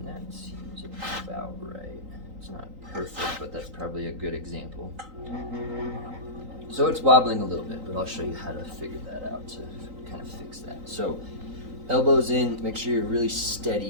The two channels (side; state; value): left; late; 3.9 ms